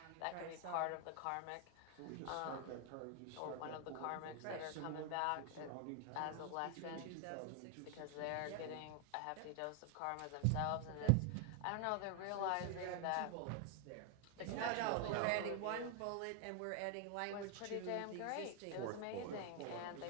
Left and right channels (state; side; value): different; both; correlation 0.00